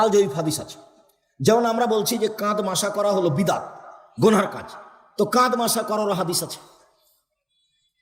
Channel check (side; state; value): both; identical; correlation 1.00